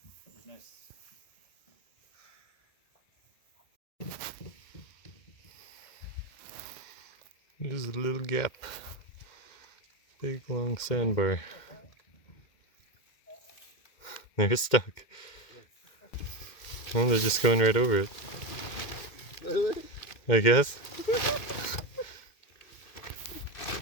There's a little gap. Big long sandbar. They're stuck. Oh, they're just going right over it. I guess.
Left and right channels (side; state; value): right; late; 2.1 ms